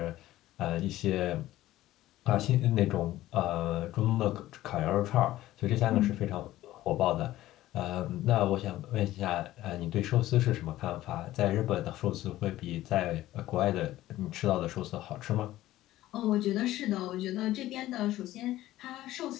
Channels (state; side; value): quieter; right; 15.2 dB